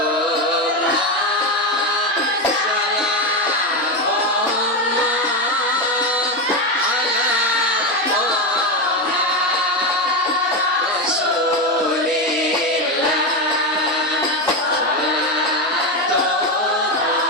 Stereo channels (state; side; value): normal; both; correlation 0.13